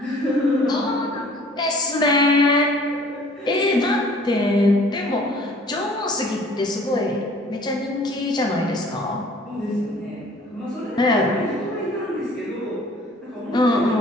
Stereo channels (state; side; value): normal; both; correlation 0.53